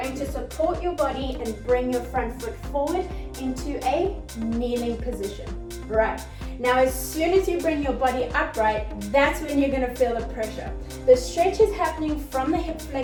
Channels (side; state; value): both; identical; correlation 1.00